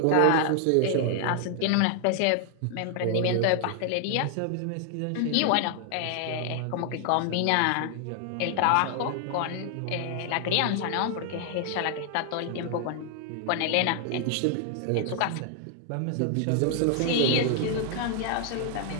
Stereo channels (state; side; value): different; both; correlation 0.00